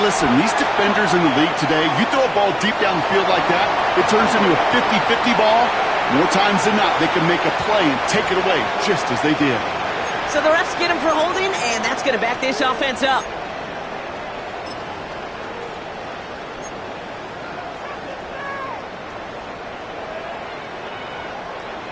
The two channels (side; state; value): both; identical; correlation 1.00